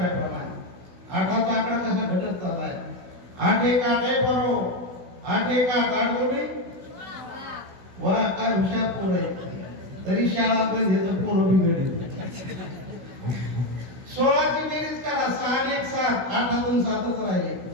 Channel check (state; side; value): late; left; 16 ms